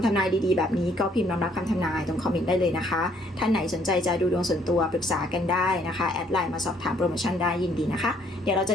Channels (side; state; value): both; normal; correlation 0.65